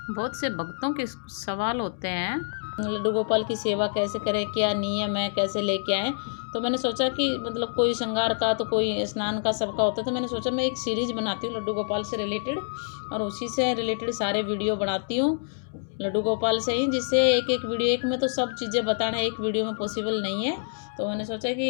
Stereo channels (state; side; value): silent; right; digital silence